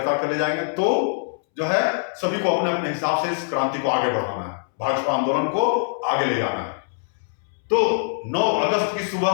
कर ले जाएंगे, तो जो है सभी को अपने अपने हिसाब से इस क्रांति को आगे बढ़ाना है, भाजपा आंदोलन को आगे ले जाना है। तो 9 अगस्त की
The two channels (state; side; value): silent; right; 63 dB below the other